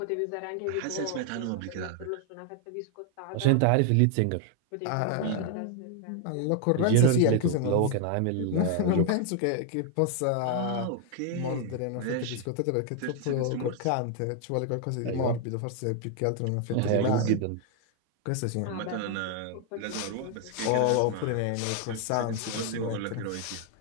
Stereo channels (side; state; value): both; different; correlation 0.00